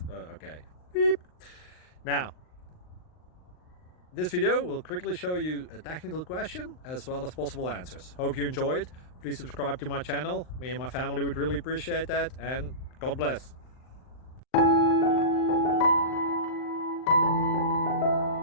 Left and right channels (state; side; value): late; right; 39 ms